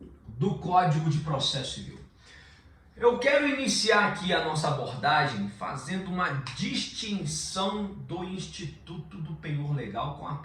do Código de Processo Civil. Eu quero iniciar aqui a nossa abordagem fazendo uma distinção do Instituto do Penhor Legal com a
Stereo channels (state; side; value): identical; both; correlation 1.00